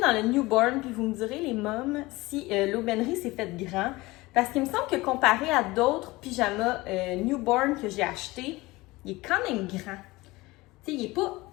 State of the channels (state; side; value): quieter; right; 20.9 dB